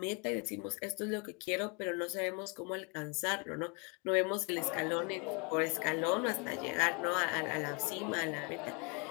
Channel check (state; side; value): quieter; right; 33.1 dB